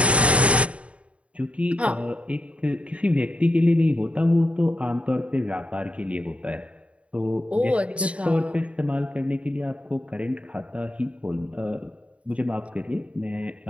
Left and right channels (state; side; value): late; left; 0.063 ms